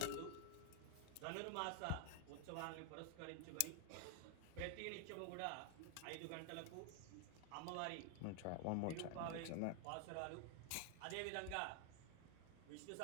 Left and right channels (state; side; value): different; both; correlation 0.00